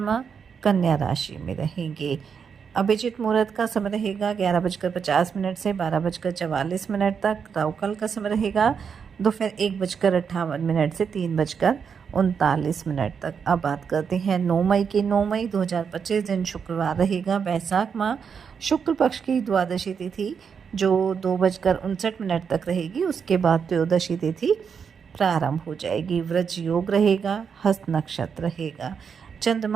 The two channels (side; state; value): left; quieter; 6.6 dB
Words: कन्या राशि में रहेंगे। अभिजित मुहूर्त का समय रहेगा 11:50 से 12:44 तक। राहुकाल का समय रहेगा दोपहर 1:58 से 3:39 तक। अब बात करते हैं 9 मई की। 9 मई 2025 दिन शुक्रवार रहेगा, बैसाख माह शुक्ल पक्ष की द्वादशी तिथि जो 2:59 तक रहेगी। उसके बाद त्रयोदशी तिथि प्रारंभ हो जाएगी। वृज योग रहेगा, हस्त नक्षत्र रहेगा।